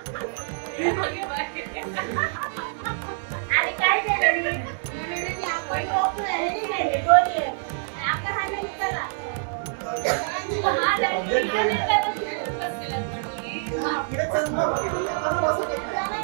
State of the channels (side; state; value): left; silent; 61 dB below the other